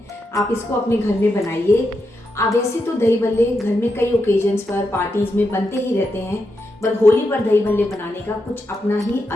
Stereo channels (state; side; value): normal; both; correlation 0.85